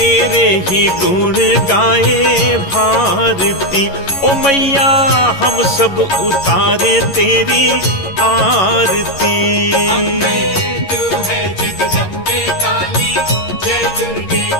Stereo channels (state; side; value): late; right; 11 ms